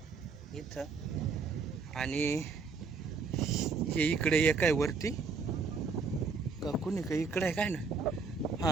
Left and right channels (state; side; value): quieter; left; 4.8 dB